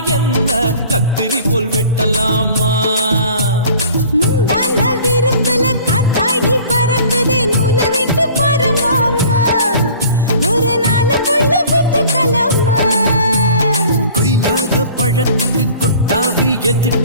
என்ன கத்திரி போல் வெட்டலாமா முந்தான விருப்பல காத்தாடி பறக்குதே நூலை விட்டு பாரு மாமா ஒரு நாள் புள்ள பெத்துக்கலாமா கொய்யாத பழத்துக்கு கொட்டாவி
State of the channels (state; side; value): inverted; both; correlation -0.48